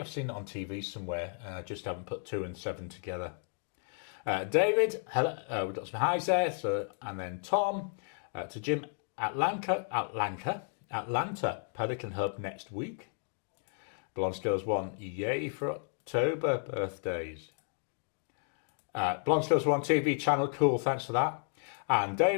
seen it on TV somewhere and I just haven't put 2 and 7 together. David, hello, we've got some highs there. So, and then Tom, to Jim, Atlanta, Pelican Hub next week. Blonde Skills 1, yay for October birthdays. Blonde Skills 1 TV channel, cool, thanks for that. And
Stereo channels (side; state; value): right; silent; 56 dB below the other